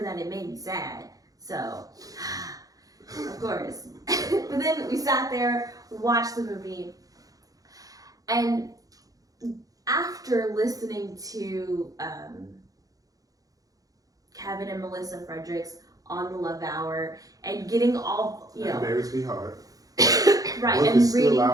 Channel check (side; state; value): left; late; 0.17 ms